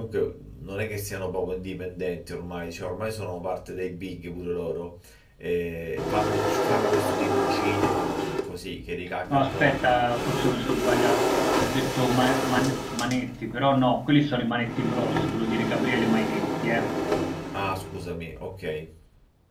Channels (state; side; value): identical; both; correlation 1.00